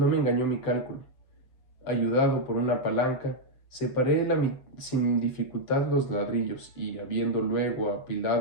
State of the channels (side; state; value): right; late; 7.7 ms